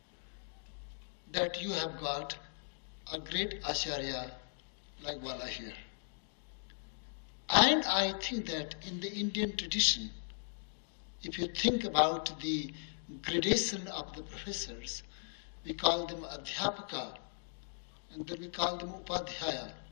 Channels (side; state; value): right; silent; digital silence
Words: that you have got a great Acharya like Bala here. And I think that in the Indian tradition, if you think about the gradation of the professors, we call them Adhyapaka, and then we call them Upadhyaya,